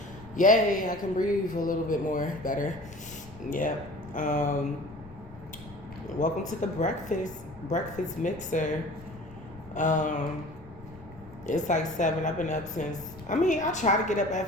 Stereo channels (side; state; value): left; noise; rumble, 19 dB below the sound